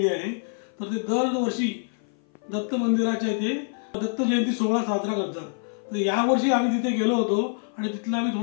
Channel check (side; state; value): right; silent; 56 dB below the other